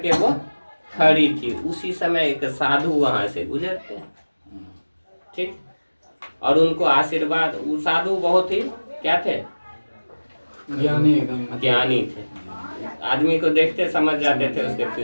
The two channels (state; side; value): inverted; both; correlation -1.00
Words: वो खड़ी थी। उसी समय एक साधु वहां से गुजरते हैं। ठीक, और उनको आशीर्वाद, वो साधु बहुत ही क्या थे, ज्ञानी एकदम ज्ञानी थे। आदमी को देखते समझ जाते थे उसके